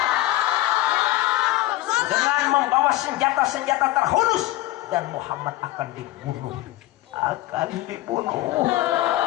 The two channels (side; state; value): right; quieter; 16.9 dB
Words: Dengan membawa senjata-senjata terhunus, dan Muhammad akan dibunuh. Katakan